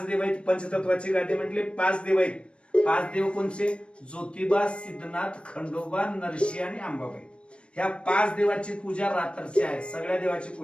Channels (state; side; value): late; right; 0.058 ms